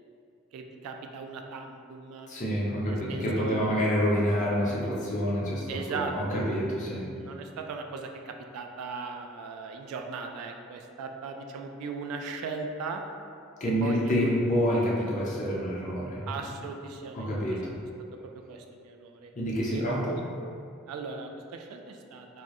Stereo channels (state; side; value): normal; both; correlation 0.55